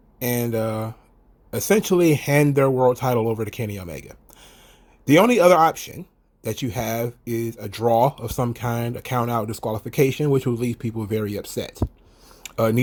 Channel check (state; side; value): identical; both; correlation 1.00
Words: and essentially hand their world title over to Kenny Omega. The only other option that you have is a draw of some kind, a count out disqualification, which will leave people very upset.